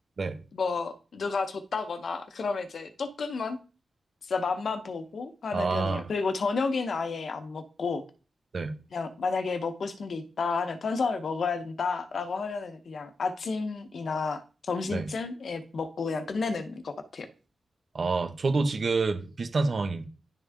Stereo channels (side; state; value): both; normal; correlation 0.86